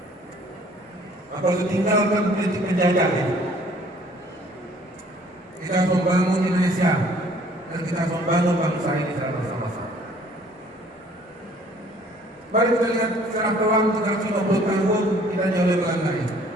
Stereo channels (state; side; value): normal; both; correlation 0.57